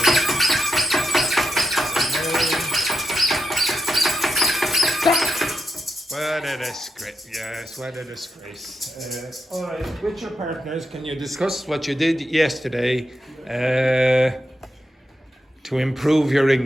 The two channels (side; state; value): both; normal; correlation 0.85